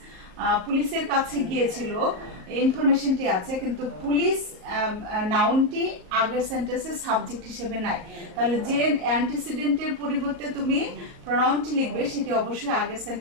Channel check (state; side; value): late; left; 38 ms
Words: পুলিশের কাছে গিয়েছিল, ইনফরমেশনটি আছে, কিন্তু পুলিশ নাউনটি আগের সেন্টেন্সে সাবজেক্ট হিসেবে নাই। তাহলে যে অ্যান্টিসিডেন্টের পরিবর্তে তুমি প্রোনাউনটি লিখবে সেটি অবশ্যই আগের